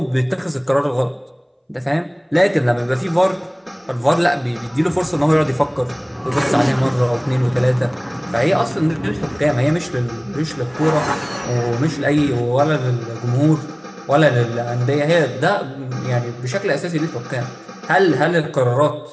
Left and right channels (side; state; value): both; identical; correlation 1.00